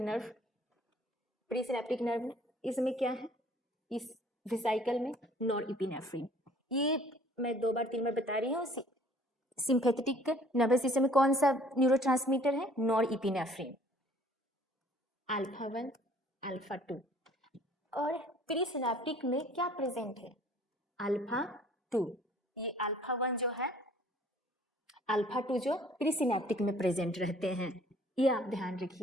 प्रीसिनेप्टिक नर्व में इसमें क्या है? इस वेसिकल में नॉरएपिनेफ्रिन। ये मैं 2 बार 3 बार बता रही हूँ। सिंपैथेटिक नर्वस सिस्टम में कौन सा न्यूरोट्रांसमीटर है? नॉरएपिनेफ्रिन। Alpha 1, alpha 2। और प्रीसिनेप्टिक में क्या प्रेजेंट है? अल्फा 2। ये अल्फा 1 जो है, अल्फा 2 जो प्रीसिनेप्टिक में प्रेजेंट रहते हैं, ये आप ध्यान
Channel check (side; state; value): both; normal; correlation 0.55